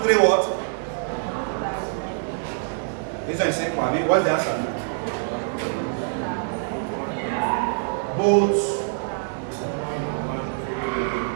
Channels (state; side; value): silent; left; 55 dB below the other